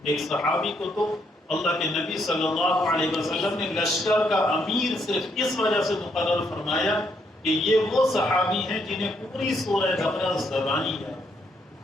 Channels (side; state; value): both; normal; correlation 0.74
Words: ایک صحابی کو تو اللہ کے نبی صلی اللہ علیہ وسلم نے لشکر کا امیر صرف اس وجہ سے مقرر فرمایا کہ یہ وہ صحابی ہیں جنہیں پوری سورہ بقرہ زبانی ہے۔